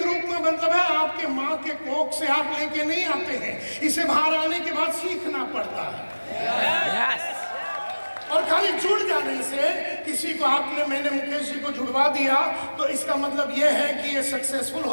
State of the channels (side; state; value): both; inverted; correlation -1.00